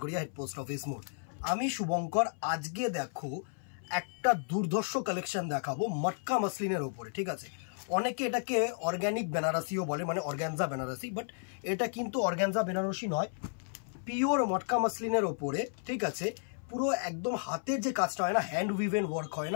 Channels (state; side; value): silent; right; 56 dB below the other